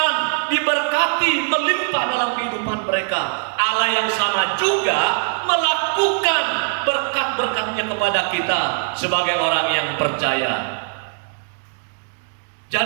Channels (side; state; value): left; silent; digital silence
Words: diberkati, melimpah dalam kehidupan mereka. Allah yang sama juga melakukan berkat-berkatnya kepada kita sebagai orang yang percaya.